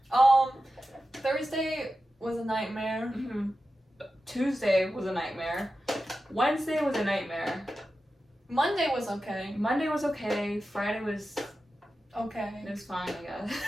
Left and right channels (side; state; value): both; normal; correlation 0.92